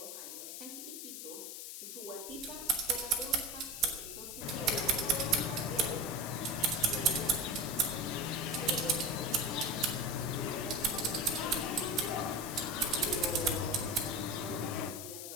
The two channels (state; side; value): noise; left; hiss, 8 dB below the sound